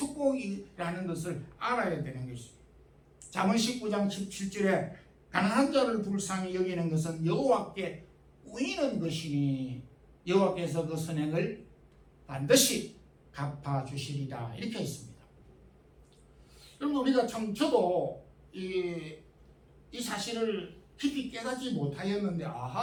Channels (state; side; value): identical; both; correlation 1.00